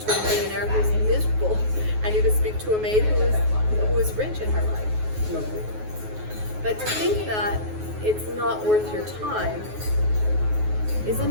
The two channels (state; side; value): late; left; 9.4 ms